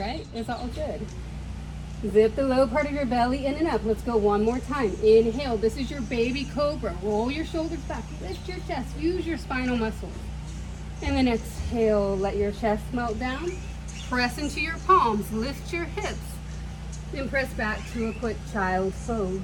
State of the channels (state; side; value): identical; both; correlation 1.00